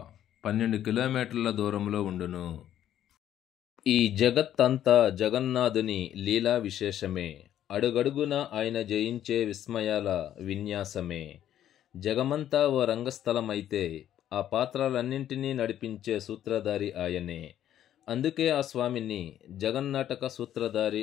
12 కిలోమీటర్ల దూరంలో ఉండును. ఈ జగత్తంతా జగన్నాథుని లీలా విశేషమే. అడుగడుగున ఆయన జయించే విస్మయాల విన్యాసమే. జగమంతా ఓ రంగస్థలమైతే ఆ పాత్రలన్నింటినీ నడిపించే సూత్రధారి ఆయనే. అందుకే ఆ స్వామిని జగన్నాటక సూత్రధారి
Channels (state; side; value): quieter; right; 11.2 dB